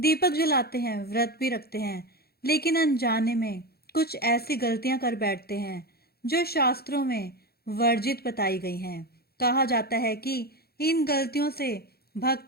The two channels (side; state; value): right; late; 0.46 ms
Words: जलाते हैं, व्रत भी रखते हैं, लेकिन अनजाने में कुछ ऐसी गलतियां कर बैठते हैं जो शास्त्रों में वर्जित बताई गई हैं। कहा जाता है कि इन गलतियों से